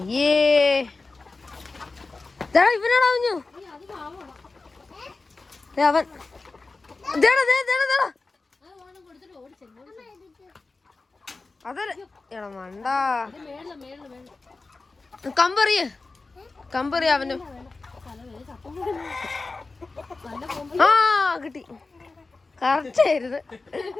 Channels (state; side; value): quieter; right; 3.7 dB